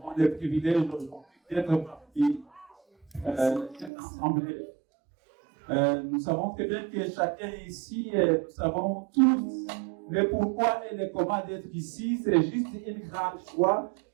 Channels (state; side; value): drops out; left; at 3.9 s